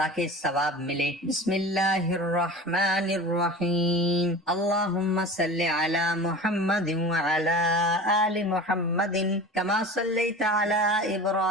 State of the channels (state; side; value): normal; both; correlation 0.35